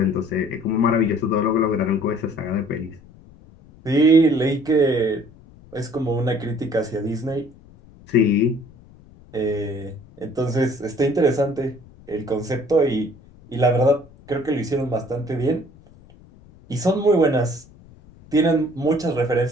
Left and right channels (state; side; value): noise; left; rumble, 24 dB below the sound